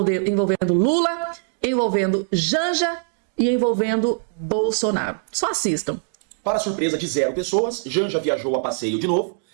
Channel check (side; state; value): left; silent; digital silence